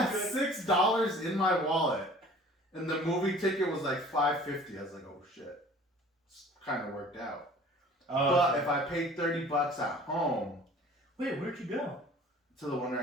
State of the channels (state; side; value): normal; both; correlation 0.48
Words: $6 in my wallet, and the movie ticket was like $5.50. I was like, oh shit, kind of worked out. But if I paid $30 at home, wait, where'd you go? To the one